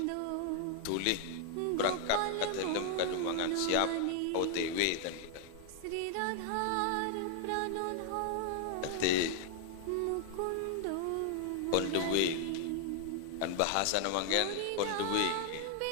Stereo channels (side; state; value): both; different; correlation 0.00